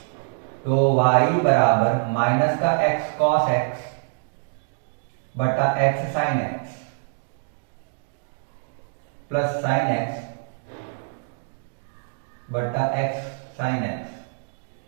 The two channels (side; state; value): left; silent; digital silence